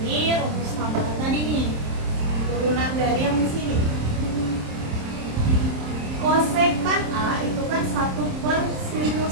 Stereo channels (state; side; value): late; left; 27 ms